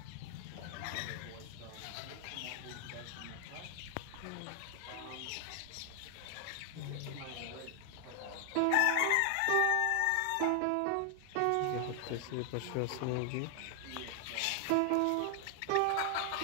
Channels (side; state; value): both; different; correlation 0.00